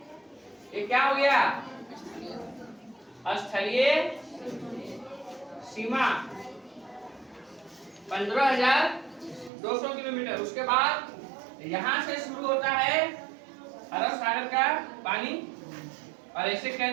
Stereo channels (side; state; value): left; drops out; at 9.5 s